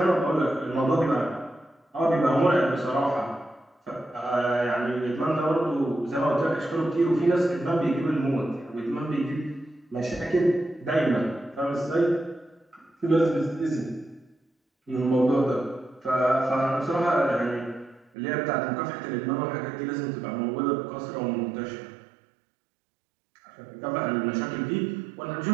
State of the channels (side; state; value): left; drops out; at 18.1 s